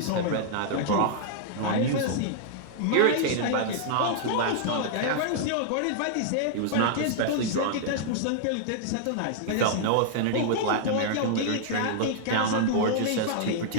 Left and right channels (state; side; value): different; both; correlation -0.01